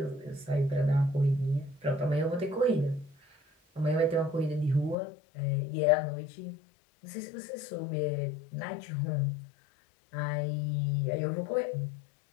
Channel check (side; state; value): right; drops out; at 5.0 s